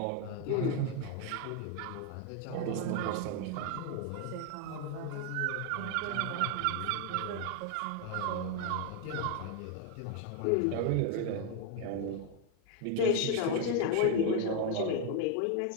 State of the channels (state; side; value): different; both; correlation 0.01